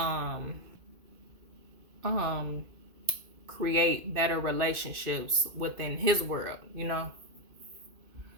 create better relationships within his world, you know?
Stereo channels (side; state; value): left; late; 2.5 ms